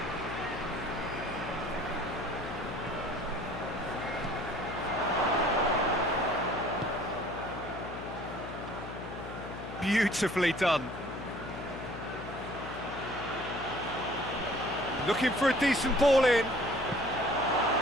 Beautifully done. Looking for a decent ball in.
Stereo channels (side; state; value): left; noise; hum, 10 dB below the sound